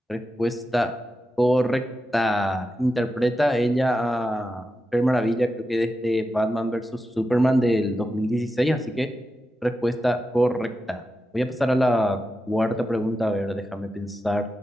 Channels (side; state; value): both; normal; correlation 0.90